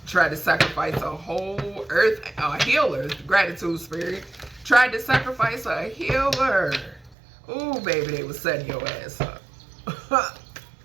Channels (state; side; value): drops out; left; at 7.2 s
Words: Tried to sacrifice a whole earth, a healer, gratitude spirit. Tried to sacrifice a healer. Ooh, baby, they was setting your ass up.